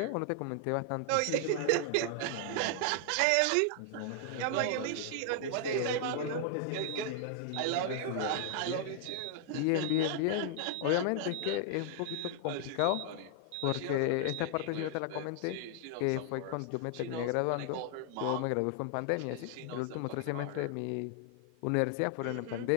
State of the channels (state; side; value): different; both; correlation -0.01